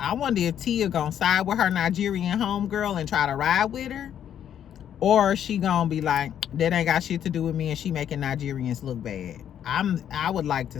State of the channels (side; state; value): right; quieter; 9.7 dB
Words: Tia gonna side with her Nigerian homegirl and try to ride with her, or she gonna be like, that ain't got shit to do with me and she making Nigerians look bad. I would like to